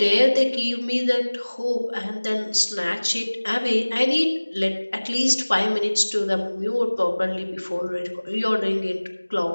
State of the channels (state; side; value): inverted; both; correlation -1.00